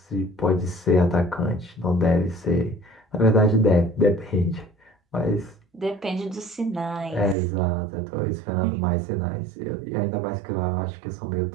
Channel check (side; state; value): left; drops out; at 7.4 s